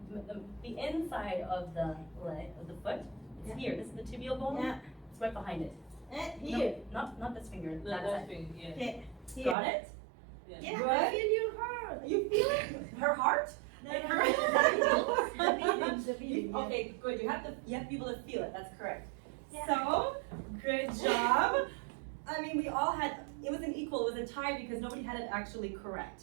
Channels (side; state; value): left; drops out; at 9.6 s